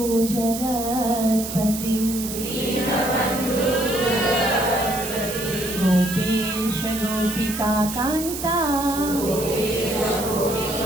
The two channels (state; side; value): noise; right; hiss, 7 dB below the sound